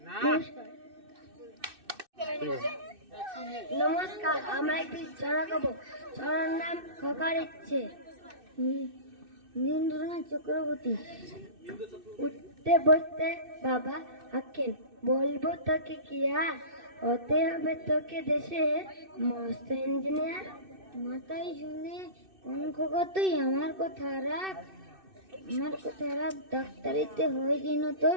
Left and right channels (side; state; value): left; late; 2.6 ms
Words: নমস্কার। নমস্কার, আমরা একটি ছড়া গাবো। ছড়ার নাম খোকার ইচ্ছে। নীরেন্দ্রনাথ চক্রবর্তী। উঠতে বসতে বাবা আঁকেন, বলবো তোকে কি আর, হতে হবে তোকে দেশে মস্ত ইঞ্জিনিয়ার, মাথায় শুনে কোন খোকা তুই আমার কথা রাখ, আমার কথা রাখ, ডাক্তারিতে হয়ে যেন